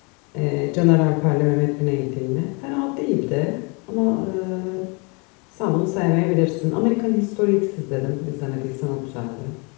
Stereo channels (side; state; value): right; quieter; 31.9 dB